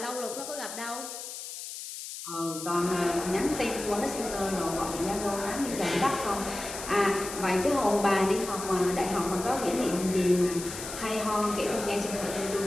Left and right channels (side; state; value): left; noise; hiss, 9 dB below the sound